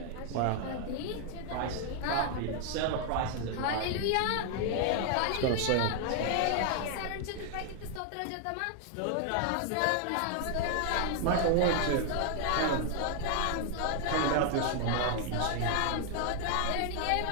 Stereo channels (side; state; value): both; different; correlation 0.00